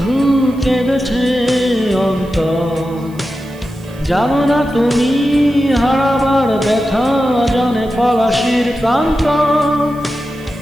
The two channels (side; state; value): right; noise; hiss, 26 dB below the sound